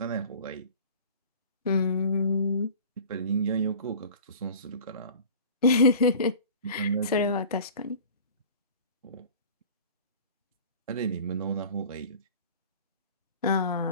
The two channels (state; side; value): inverted; both; correlation -0.42